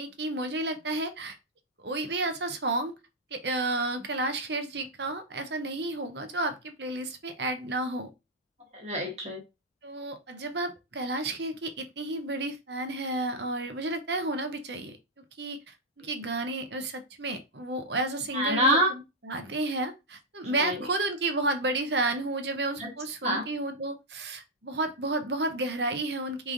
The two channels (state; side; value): normal; both; correlation -0.04